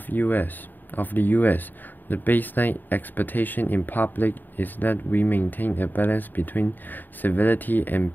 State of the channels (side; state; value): right; late; 0.090 ms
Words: the US, the baseline expectation in public is that we maintain a balance between civility and